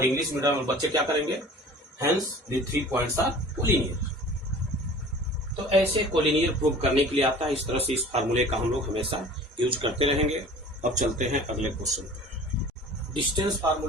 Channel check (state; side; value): normal; both; correlation 0.44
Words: इंग्लिश मीडियम में बच्चे क्या करेंगे, hence the 3 points are collinear. तो ऐसे कोलिनियर प्रूव करने के लिए आता है। इस तरह से इस फार्मूले का हम लोग हमेशा यूज करते रहेंगे। अब चलते हैं अगले क्वेश्चन पर। डिस्टेंस